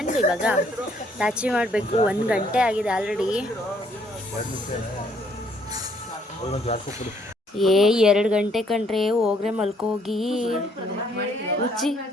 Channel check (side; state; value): both; normal; correlation 0.66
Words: ಇವಾಗ ಲಾಚಿ ಮಾಡಬೇಕು. 1 ಗಂಟೆ ಆಗಿದೆ ಆಲ್ರೆಡಿ. 2 ಗಂಟೆ ಕಂಡ್ರೆ ಹೋಗ್ರೆ ಮಲ್ಕೋಗಿ. ಹುಚ್ಚಿ